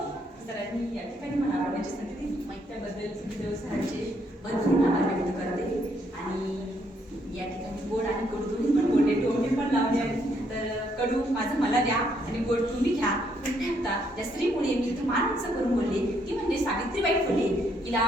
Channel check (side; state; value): both; normal; correlation 0.72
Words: सरांनी या ठिकाणी मला आवडण्याची संधी दिली त्याबद्दल सुखदेव सरांचे भरपूर आभार व्यक्त करते. आणि या ठिकाणी गोड आणि कडू दोन्ही पण बोलले, टोमणे पण लावले आहेत. तर कडू माझं मला द्या आणि गोड तुम्ही घ्या. त्या स्त्रीमुळे मी इथं मान उंच करून बोलले ती म्हणजे सावित्रीबाई फुले.